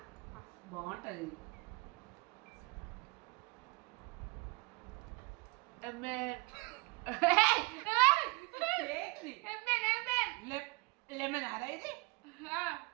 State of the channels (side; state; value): left; quieter; 25.9 dB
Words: బాగుంటుంది. లెమన్ అరా ఇది?